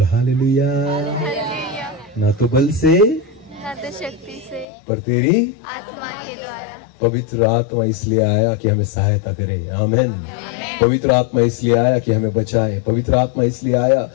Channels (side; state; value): right; drops out; at 4.7 s